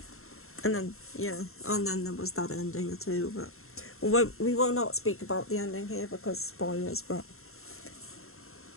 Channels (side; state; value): right; late; 0.62 ms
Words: And then, yeah, and then there was that ending too, but we will not speak about the ending here because spoilers, but